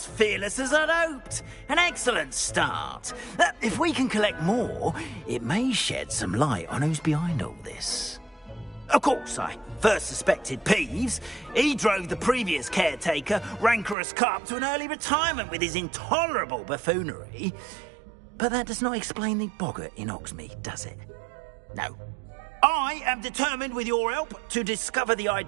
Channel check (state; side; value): drops out; left; at 14.0 s